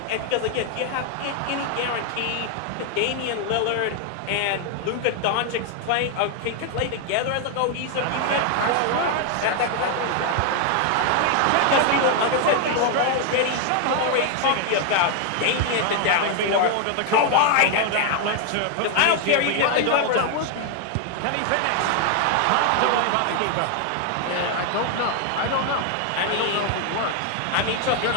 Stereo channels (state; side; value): different; both; correlation 0.00